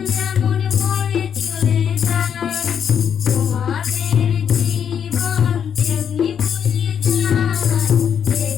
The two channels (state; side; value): quieter; right; 8.0 dB